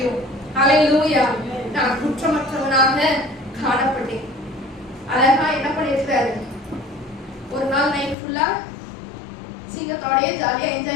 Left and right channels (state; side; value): drops out; right; at 8.2 s